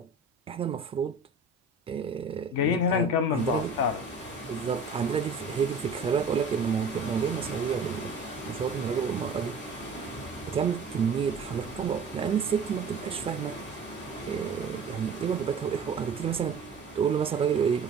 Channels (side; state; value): left; quieter; 3.5 dB